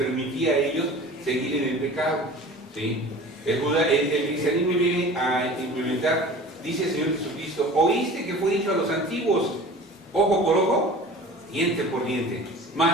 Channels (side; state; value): both; normal; correlation 0.40